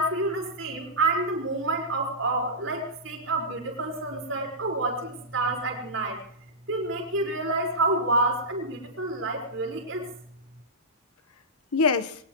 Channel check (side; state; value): both; normal; correlation -0.14